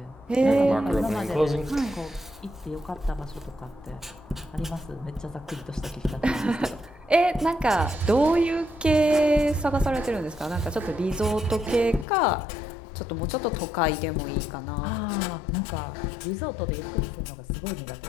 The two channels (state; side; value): drops out; right; at 12.1 s